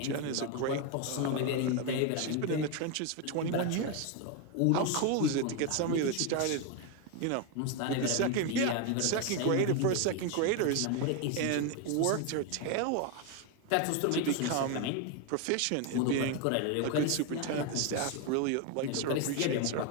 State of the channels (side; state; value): both; different; correlation 0.01